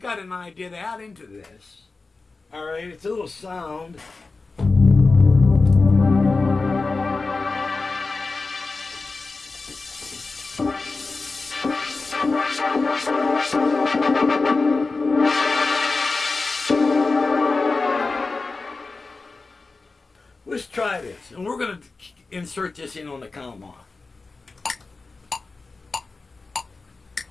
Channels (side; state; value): right; quieter; 3.8 dB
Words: an idea to add into this. Alright, it's a little sound. Let's try this. And we're going to insert this in on the count off.